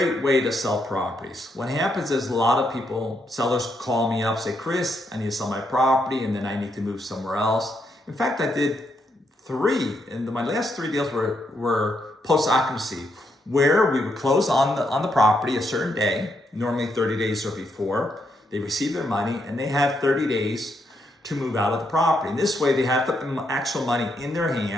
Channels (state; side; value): normal; both; correlation 0.78